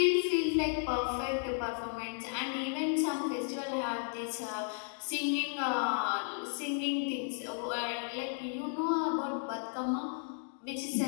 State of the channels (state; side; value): silent; right; 55 dB below the other